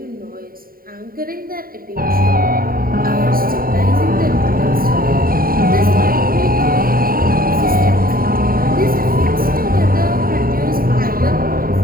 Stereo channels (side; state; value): left; late; 0.42 ms